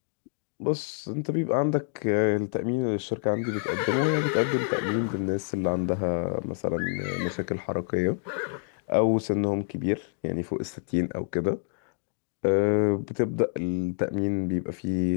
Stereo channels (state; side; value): silent; right; digital silence